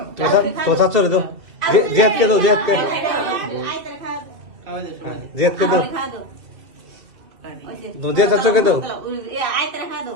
তো চাচ্ছ রে দাও। জিয়াদকে দাও, জিয়াদকে। খাওয়া দাও সবাই। জিয়াদকে দাও। জিয়াদ চাচ্ছকে দাও। আইতে রাখা দাও।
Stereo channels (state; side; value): late; left; 2.7 ms